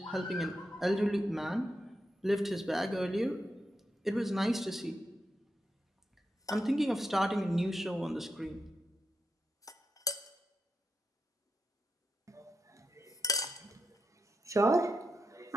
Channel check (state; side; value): normal; both; correlation 0.85